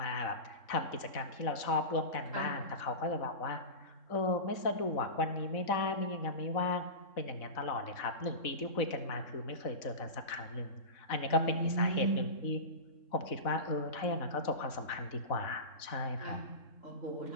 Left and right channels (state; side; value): late; right; 4.0 ms